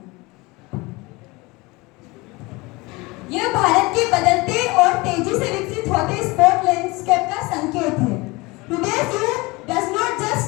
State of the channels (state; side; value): quieter; right; 23.9 dB